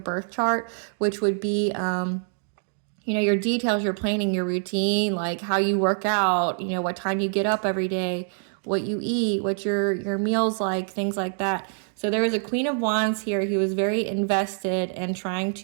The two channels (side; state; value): left; silent; digital silence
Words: chart, which would be, you know, your details, your planning, your routine, like how you work out, you know, what time you get up every day, what you eat, what your meals like, things like that. So there was a Queen of Wands here who was very invested in trying